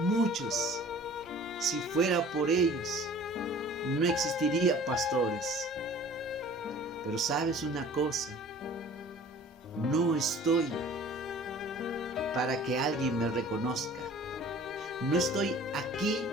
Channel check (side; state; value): both; normal; correlation 0.47